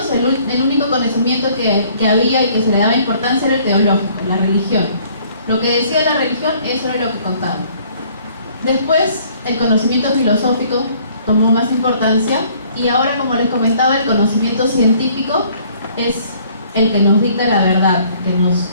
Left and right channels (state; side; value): inverted; both; correlation -0.59